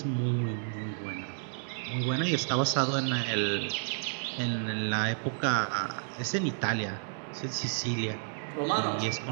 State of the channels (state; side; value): silent; left; 57 dB below the other